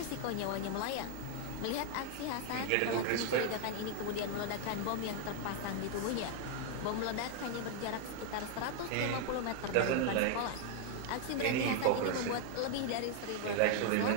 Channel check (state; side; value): different; both; correlation 0.00